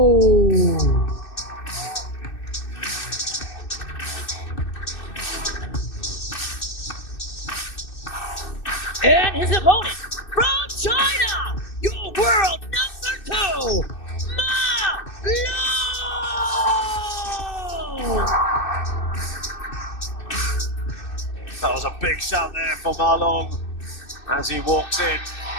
And his opponent from China, your world number 2, Malong. That was a big shout there for Malong as he walks in.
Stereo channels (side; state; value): right; late; 2.6 ms